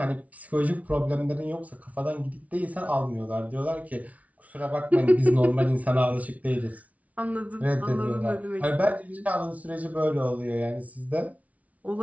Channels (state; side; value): late; left; 0.069 ms